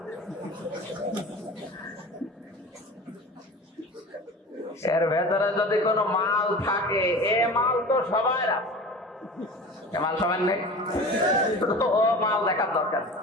এর ভেতরে যদি কোনো মাল থাকে, এ মাল তো সবাই আছে, এ মাল সবাই নেই, তো ও মাল দেখার দরকার।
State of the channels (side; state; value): both; normal; correlation 0.37